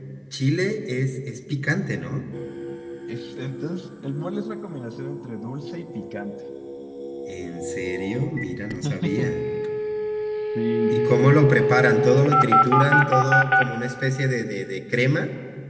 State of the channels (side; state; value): both; identical; correlation 1.00